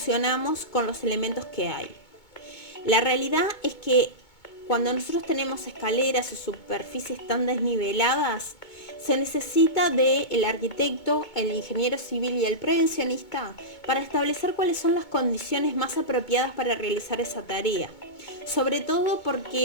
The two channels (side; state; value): right; late; 2.2 ms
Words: con los elementos que hay. La realidad es que cuando nosotros tenemos escaleras o superficies tan desniveladas, se necesita del arquitecto, el ingeniero civil y el prevencionista para establecer cuáles son las condiciones más apropiadas para realizar esa tarea. Sobre todo